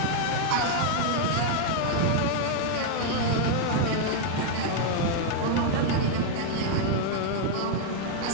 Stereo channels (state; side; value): different; both; correlation 0.00